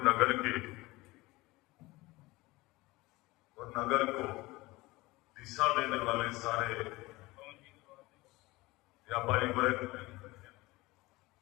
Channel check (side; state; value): right; quieter; 20.9 dB